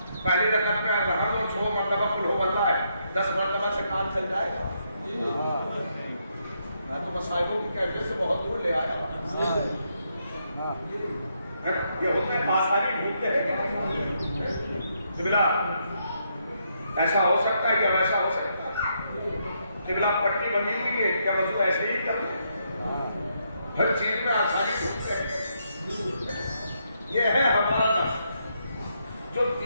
پہلی رکعت میں رحم و 6 مرتبہ قل ہو بتا ہے 10 مرتبہ سے کام چل جائے گا. میں تو مصائبوں کی کیفیت سے بہت دور لے آیا. یہ ہوتا ہے آسانی ڈھونڈتے ہیں کہ قبلہ ایسا ہو سکتا ہے یا ویسا ہو سکتا ہے. قبلہ پٹی بنی ہوئی ہے کیا وضو ایسے ہی کرتے ہیں. ہر چیز میں آسانی ڈھونڈتے ہیں. یہ ہے ہمارا نفس جو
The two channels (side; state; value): both; inverted; correlation -0.77